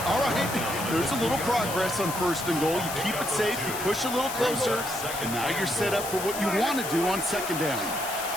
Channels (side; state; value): left; noise; hiss, 8 dB below the sound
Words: all right. There's a little progress on first and goal. You keep it safe, you push a little closer, and now you're set up for what you want to do on second down.